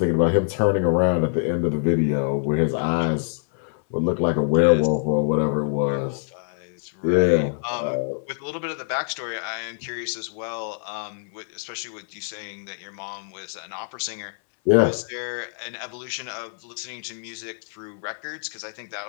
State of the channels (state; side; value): silent; right; 62 dB below the other